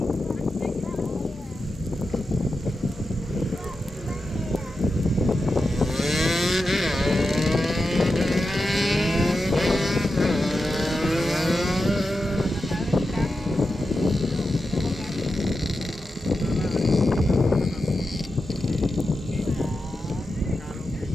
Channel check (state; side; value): normal; both; correlation 0.90